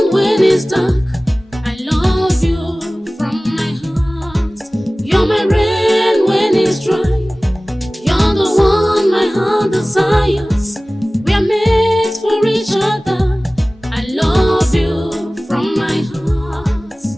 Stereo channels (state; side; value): normal; both; correlation 0.98